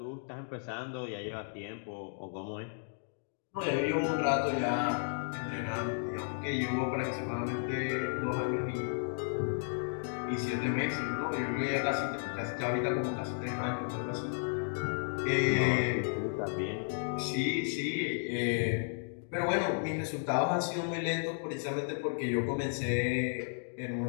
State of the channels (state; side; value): silent; right; digital silence